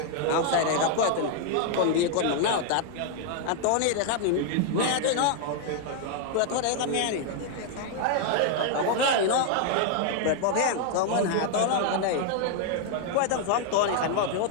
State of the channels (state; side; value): different; both; correlation 0.00